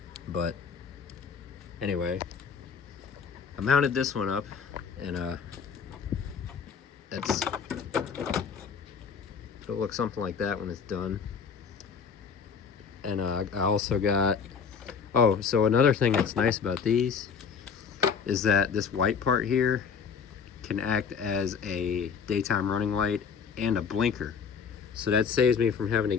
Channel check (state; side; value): quieter; right; 6.3 dB